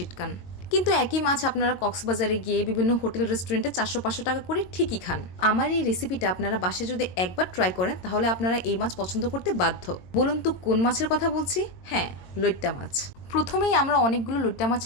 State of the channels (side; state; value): right; late; 22 ms